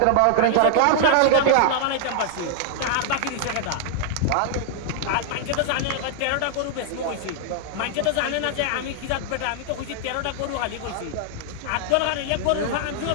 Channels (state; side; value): different; both; correlation -0.01